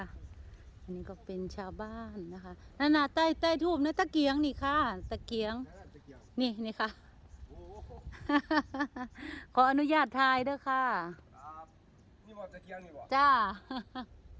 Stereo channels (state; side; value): identical; both; correlation 1.00